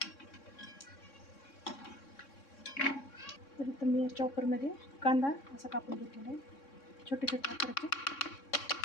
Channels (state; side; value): late; right; 3.6 ms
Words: तर इथं मी चॉपरमध्ये कांदा असा कापून घेतलेला आहे. छोटे छोटे आकाराचे